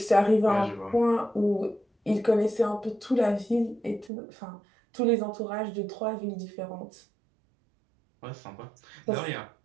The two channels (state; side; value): drops out; left; at 4.1 s